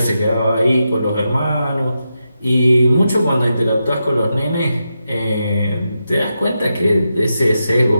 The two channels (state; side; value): inverted; both; correlation -0.87